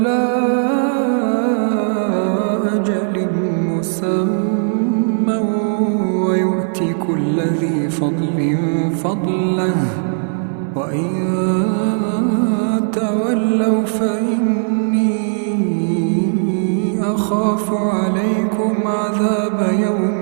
أجل مسمى ويؤتي كل ذي فضل فضله وإن تولوا فإني أخاف عليكم عذاب يوم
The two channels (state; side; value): silent; left; digital silence